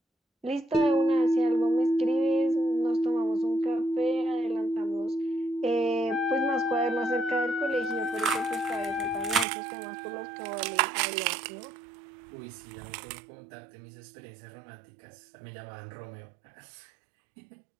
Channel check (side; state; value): left; drops out; at 9.5 s